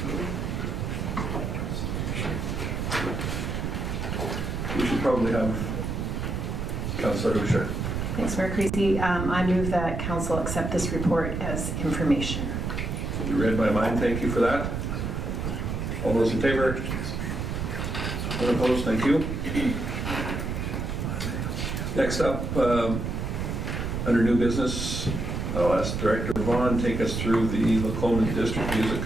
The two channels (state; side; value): noise; right; rumble, 2 dB below the sound